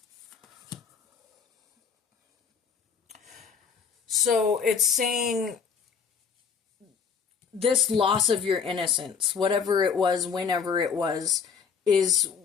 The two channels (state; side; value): quieter; right; 6.3 dB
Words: So it's saying this loss of your innocence, whatever it was, whenever it was, is